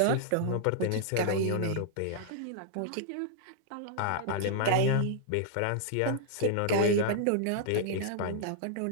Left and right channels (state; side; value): different; both; correlation -0.01